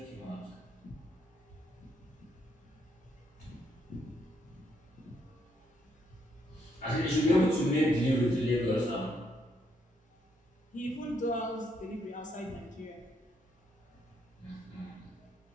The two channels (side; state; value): both; normal; correlation 0.75